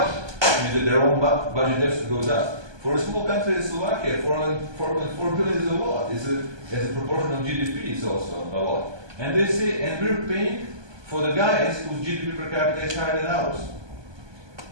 It means that their own budget has to go down. For a small country as Slovakia, 4.4 billion is a lot. As a proportion of GDP, it's also a lot. And they say, and we're paying for the guys whose GDP per capita is higher than ours.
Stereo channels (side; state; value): left; late; 1.2 ms